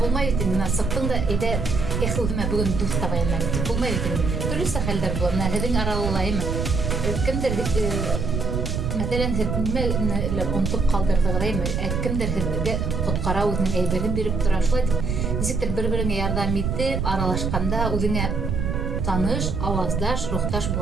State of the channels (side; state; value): right; noise; rumble, 1 dB below the sound